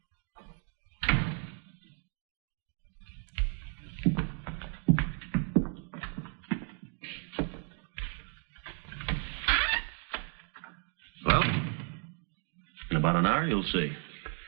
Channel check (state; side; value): quieter; left; 39.2 dB